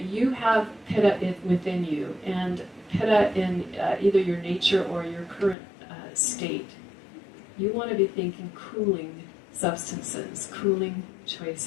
you have Pitta within you, and Pitta in either your nature or your current state, you want to be thinking cooling substances, cooling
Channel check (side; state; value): right; drops out; at 5.6 s